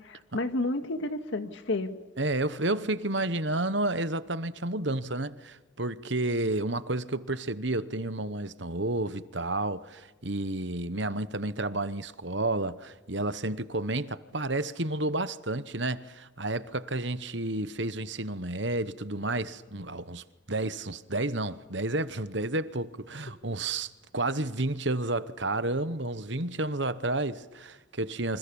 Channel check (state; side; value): normal; both; correlation 0.13